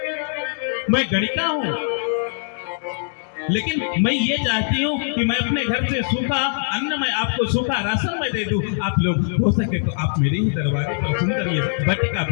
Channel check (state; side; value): silent; right; digital silence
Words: मैं गणिका हूँ, लेकिन मैं ये चाहती हूँ कि मैं अपने घर से सूखा अन्न, मैं आपको सूखा राशन में दे दूं। आप लोग हो सके तो आप मेरे ही दरवाजे पर सुंदर ये बटिका